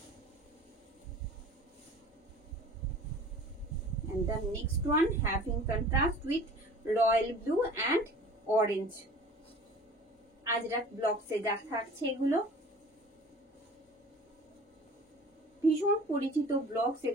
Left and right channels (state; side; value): normal; both; correlation 0.44